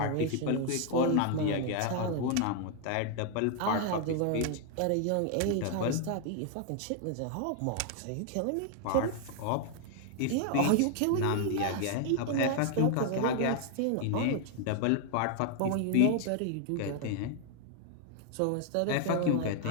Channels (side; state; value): both; different; correlation 0.00